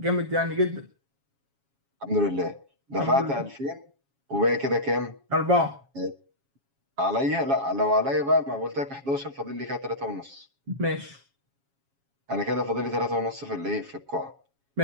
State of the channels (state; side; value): late; left; 7.3 ms